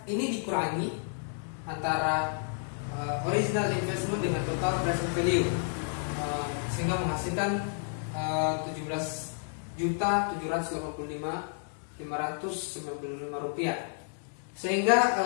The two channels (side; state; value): right; silent; 57 dB below the other